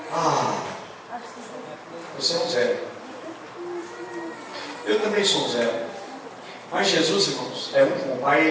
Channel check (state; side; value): identical; both; correlation 1.00